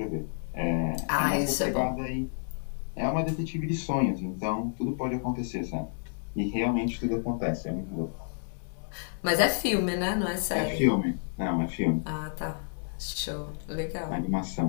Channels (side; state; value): right; silent; 58 dB below the other